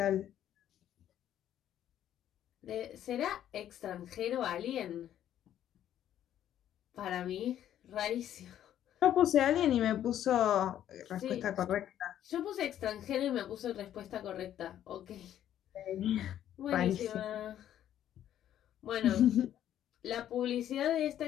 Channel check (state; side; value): quieter; right; 11.1 dB